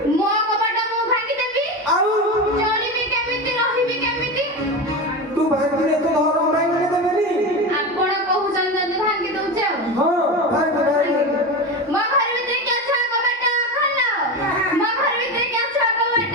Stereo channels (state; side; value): normal; both; correlation 0.22